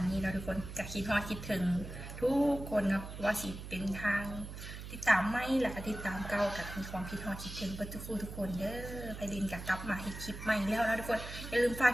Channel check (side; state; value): right; noise; hum, 10 dB below the sound